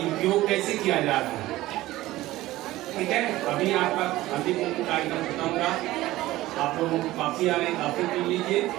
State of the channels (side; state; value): left; quieter; 16.9 dB